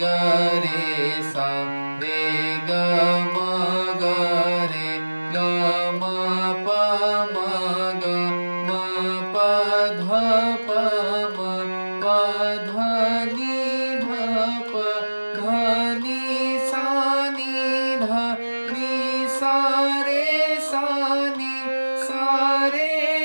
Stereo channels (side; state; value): both; inverted; correlation -1.00